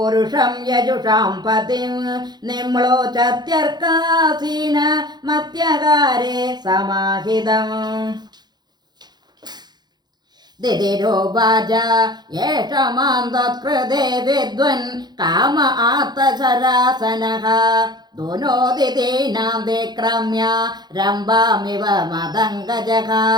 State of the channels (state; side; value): late; left; 0.20 ms